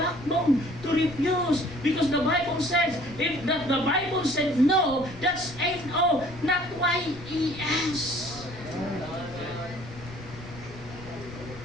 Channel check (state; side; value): noise; left; rumble, 16 dB below the sound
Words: to refuse. Because the Bible says, if the Bible said no, that's N-O, not Y-E-S.